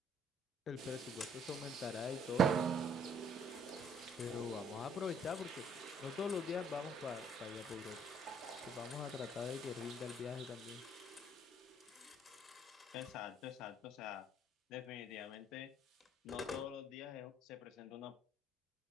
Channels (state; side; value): normal; both; correlation 0.62